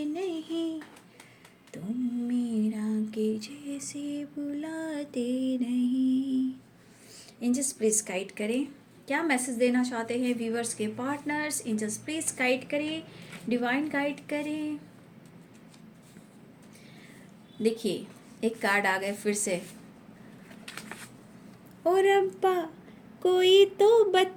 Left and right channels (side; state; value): both; identical; correlation 1.00